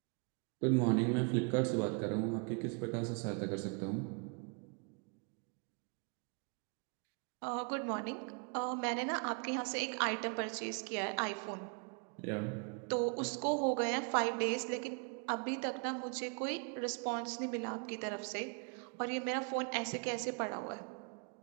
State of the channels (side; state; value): left; quieter; 37.3 dB